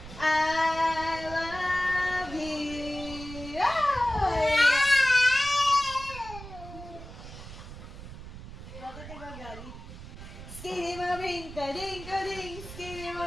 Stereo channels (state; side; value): noise; right; rumble, 13 dB below the sound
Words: I love you. Bakit ka gagalit? Skiddy maring ka, ding ka, ding. Skiddy